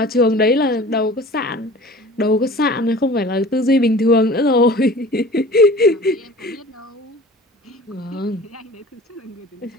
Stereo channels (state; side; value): normal; both; correlation 0.43